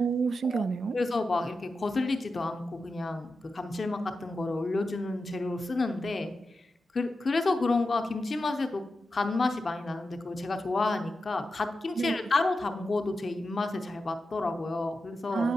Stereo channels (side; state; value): both; normal; correlation 0.90